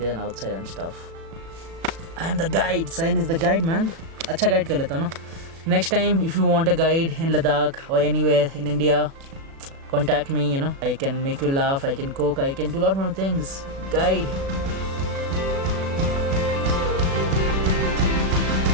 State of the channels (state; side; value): late; left; 36 ms